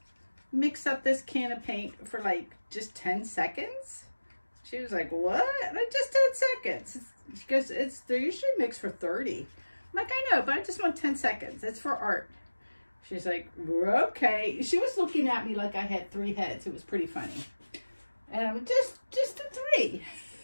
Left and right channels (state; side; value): inverted; both; correlation -1.00